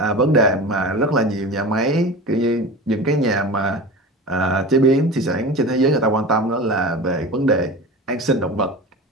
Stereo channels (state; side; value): normal; both; correlation 0.31